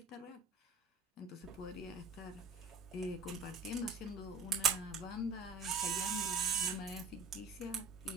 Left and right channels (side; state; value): left; quieter; 4.0 dB